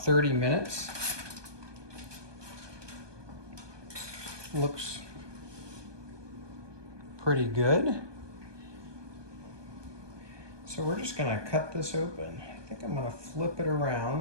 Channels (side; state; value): left; late; 1.2 ms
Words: minutes. Looks pretty good. So we're just gonna cut this open. I think I'm gonna flip it